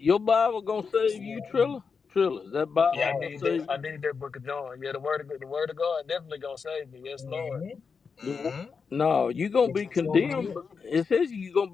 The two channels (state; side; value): quieter; right; 5.5 dB